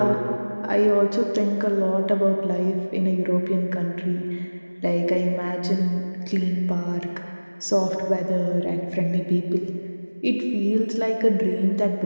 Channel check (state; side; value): inverted; both; correlation -1.00